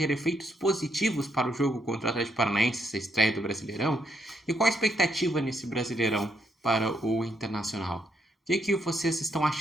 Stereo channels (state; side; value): normal; both; correlation 0.76